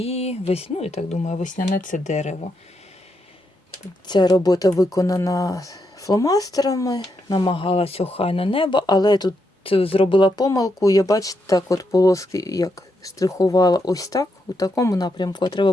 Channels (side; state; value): both; normal; correlation 0.81